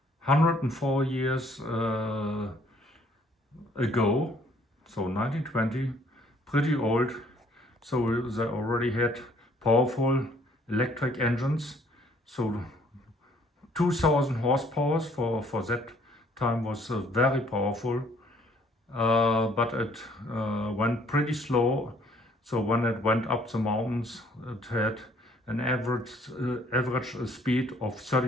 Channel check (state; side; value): normal; both; correlation 0.61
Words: 104 years ago, so 1920, pretty old, so they already had powerful electric engines, so 2000 horsepower for that time was very powerful, but it went pretty slow. So when it went up the mountains, it had an average speed of